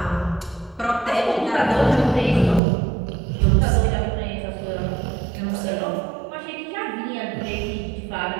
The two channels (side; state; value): left; drops out; at 2.6 s